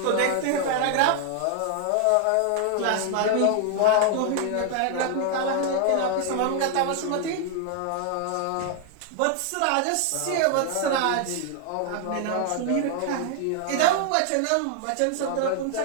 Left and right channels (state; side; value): different; both; correlation 0.00